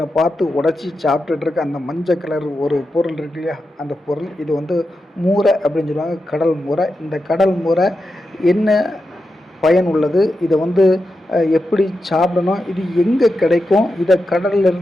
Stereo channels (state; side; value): normal; both; correlation 0.89